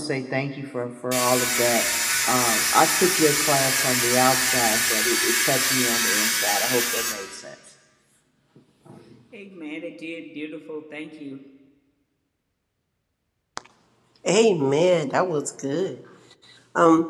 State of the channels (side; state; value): both; identical; correlation 1.00